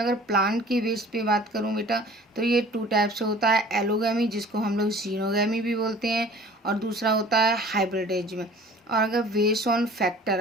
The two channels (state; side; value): normal; both; correlation 0.47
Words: प्लांट की बेस पे बात करूँ बेटा तो ये 2 टाइप से होता है। एलोगैमी, जिसको हम लोग जीनोगैमी भी बोलते हैं, और दूसरा होता है हाइब्रिडेज में। और अगर बेस्ड ऑन फैक्टर,